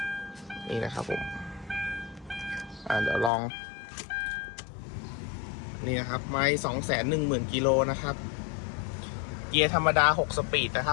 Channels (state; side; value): drops out; right; at 3.3 s